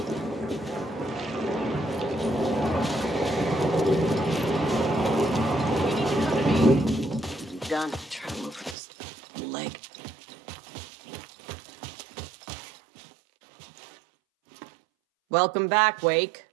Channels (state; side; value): drops out; left; at 8.8 s